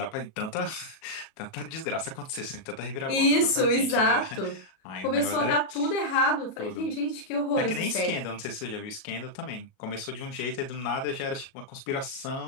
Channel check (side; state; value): right; late; 37 ms